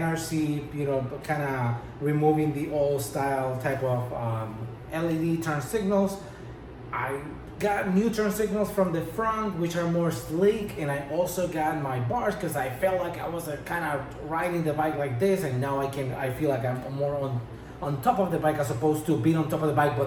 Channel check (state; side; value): identical; both; correlation 1.00